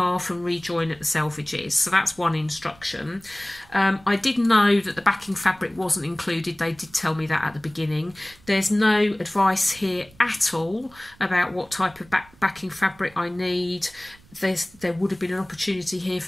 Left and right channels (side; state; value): right; noise; rumble, 27 dB below the sound